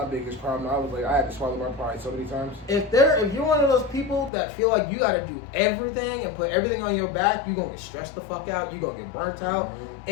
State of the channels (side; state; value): right; drops out; at 4.3 s